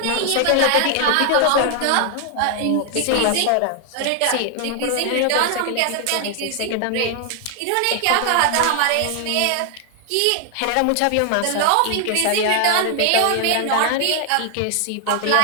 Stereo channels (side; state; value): both; different; correlation 0.00